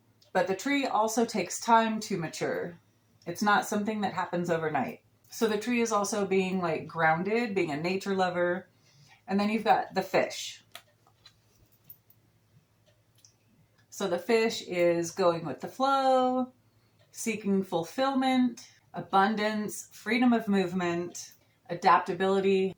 But the tree also takes time to mature. It's not something that happens overnight. So the tree is also being like grounded, being a nature lover. And then you've got the fish. So the fish is going with the flow, seeking fulfillment, abundance, freedom of movement, adaptability.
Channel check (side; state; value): both; identical; correlation 1.00